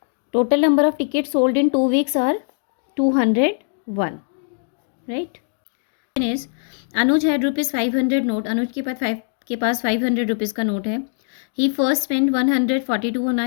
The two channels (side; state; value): right; silent; digital silence